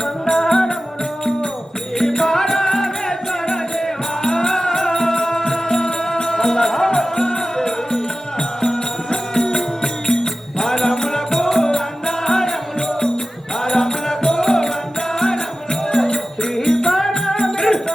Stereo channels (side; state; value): both; normal; correlation 0.95